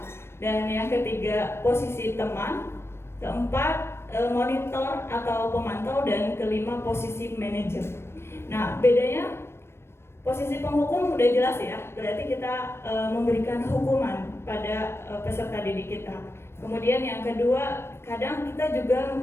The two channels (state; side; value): late; right; 0.12 ms